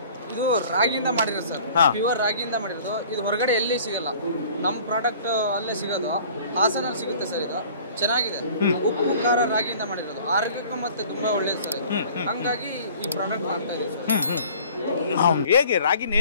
ಇದು ರಾಗಿಯಿಂದ ಮಾಡಿರೋದು ಸರ್, ಪ್ಯೂರ್ ರಾಗಿಯಿಂದ ಮಾಡಿರೋದು. ಇದು ಹೊರಗಡೆ ಎಲ್ಲಿ ಸಿಗಲ್ಲ, ನಮ್ಮ ಪ್ರಾಡಕ್ಟ್ ಅಲ್ಲೇ ಸಿಗೋದು, ಹಾಸನಲ್ಲಿ ಸಿಗುತ್ತೆ ಸರ್. ಇದು ಚೆನ್ನಾಗಿದೆ, ಉಪ್ಪು ಖಾರ ರಾಗಿಯಿಂದ ಮಾಡಿರೋದು, ಆರೋಗ್ಯಕ್ಕೂ ಮತ್ತೆ ತುಂಬಾ ಒಳ್ಳೇದು ಸರ್ ಇದು. ಹಂಗಾಗಿ ಈ ಪ್ರಾಡಕ್ಟ್ ಮಾಡ್ತಾ ಇದೀವಿ ಸರ್. ಹೇಗೆ ರಾಗಿನ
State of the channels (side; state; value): both; inverted; correlation -0.49